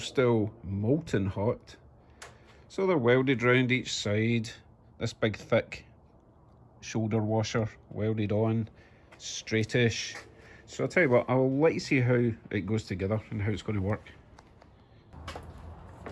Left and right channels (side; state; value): both; identical; correlation 1.00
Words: molten hot. So they're welded round each side. This big thick shoulder washer welded on, straightish. So I'll tell you what, I'll let you see how it goes together and how it's going to work.